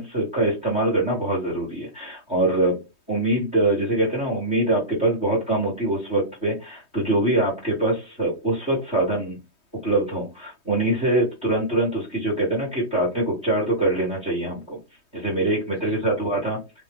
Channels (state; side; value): late; right; 3.2 ms